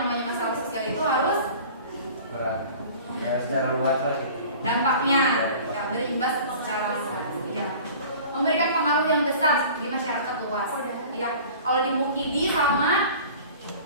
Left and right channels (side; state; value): both; inverted; correlation -0.43